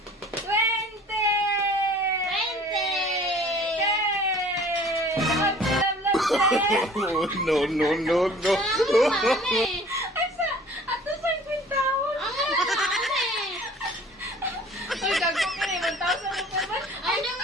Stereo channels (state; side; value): normal; both; correlation 0.49